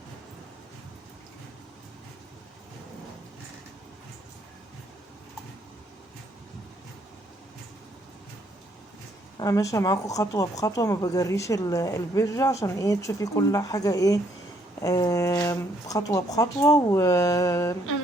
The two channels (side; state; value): both; normal; correlation 0.69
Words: انا ماشيه معاكم خطوه بخطوه، ما بجريش الفيديو عشان ايه تشوفي كل حاجه ايه خطوه بخطوه. و انا